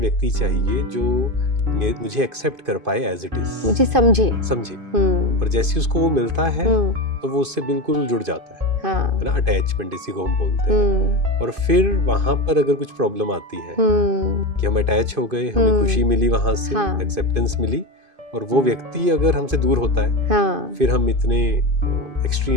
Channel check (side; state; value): left; late; 2.5 ms